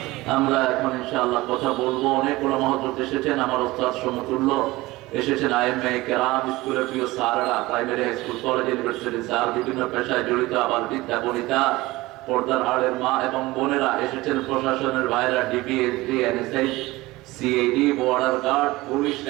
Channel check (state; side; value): quieter; left; 19.8 dB